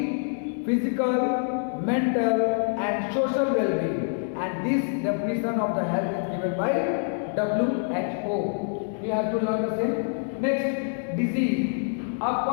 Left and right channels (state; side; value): silent; right; digital silence